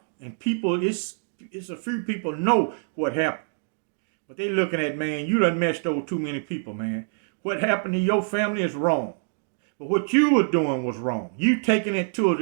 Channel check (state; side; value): silent; left; digital silence